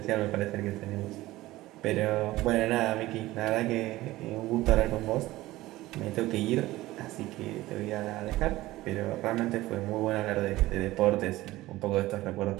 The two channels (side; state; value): left; quieter; 17.4 dB